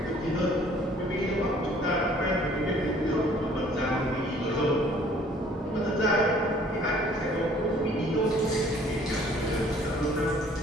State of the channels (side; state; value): both; normal; correlation 0.56